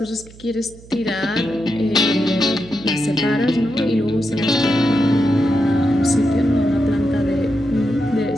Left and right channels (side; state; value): right; noise; hum, 21 dB below the sound